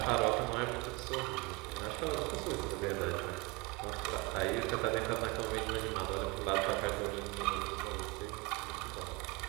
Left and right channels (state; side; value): quieter; left; 23.7 dB